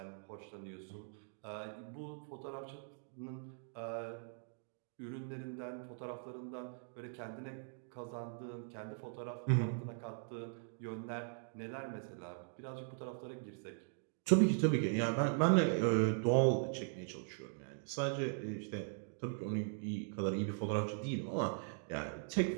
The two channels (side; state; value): left; silent; digital silence